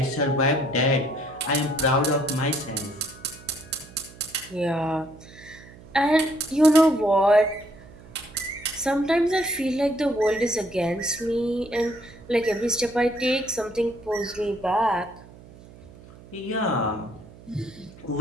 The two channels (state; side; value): noise; right; hum, 20 dB below the sound